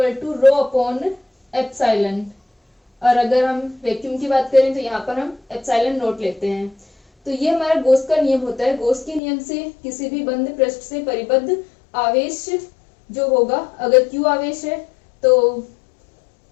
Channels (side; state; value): right; drops out; at 9.2 s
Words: to rho upon epsilon. और अगर हम वैक्यूम की बात करें तो यहाँ पर हम एप्सिलॉन नोट लेते हैं। तो ये हमारा गॉस का नियम होता है। गॉस के नियम से किसी भी बंद पृष्ठ से परिबद्ध आवेश जो होगा, अगर Q आवेश है तो